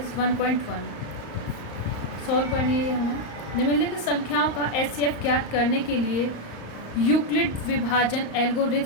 1.1 सॉल्व करनी है हमें। निम्नलिखित संख्याओं का एचसीएफ ज्ञात करने के लिए यूक्लिड विभाजन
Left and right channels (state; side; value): late; right; 35 ms